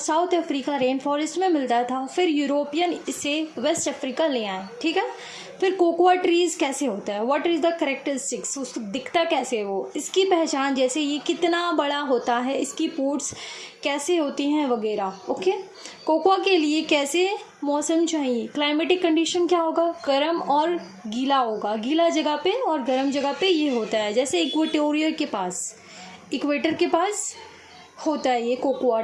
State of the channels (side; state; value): both; identical; correlation 1.00